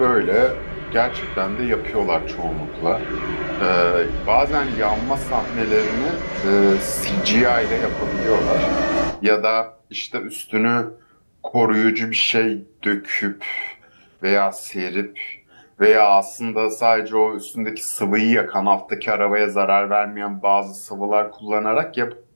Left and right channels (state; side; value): inverted; both; correlation -1.00